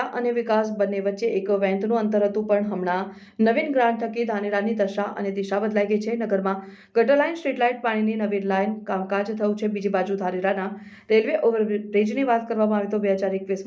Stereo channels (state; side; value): identical; both; correlation 1.00